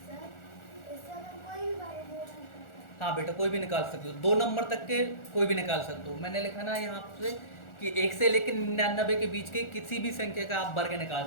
इससे हम कोई भी बारे में नहीं कर सकते। हाँ बेटा कोई भी निकाल सकते हो, 2 नंबर तक के कोई भी निकाल सकते हो। मैंने लिखा ना यहाँ से कि 1 से लेकर 99 के बीच के किसी भी संख्या का आप वर्ग निकाल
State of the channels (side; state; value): right; late; 1.4 ms